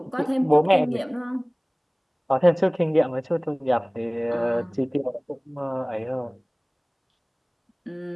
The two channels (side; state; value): both; identical; correlation 1.00